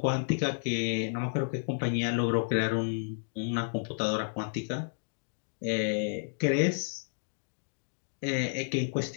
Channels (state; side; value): silent; right; digital silence